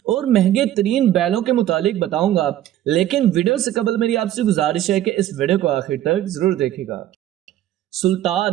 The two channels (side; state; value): left; quieter; 12.6 dB